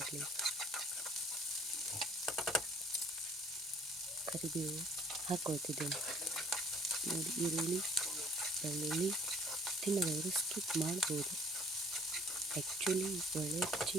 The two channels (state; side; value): normal; both; correlation 0.56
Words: ಕರಿಬೇವು ಹಾಕ್ಕೊಳ್ತಿದ್ದೇನೆ. ನೋಡಿ, ಈರುಳ್ಳಿ ಬೆಳ್ಳುಳ್ಳಿ ತಿನ್ನದವರು ಸ್ಕಿಪ್ ಮಾಡ್ಬೋದು. ಆ್ಯಕ್ಚುಲಿ ಒಳ್ಳೆ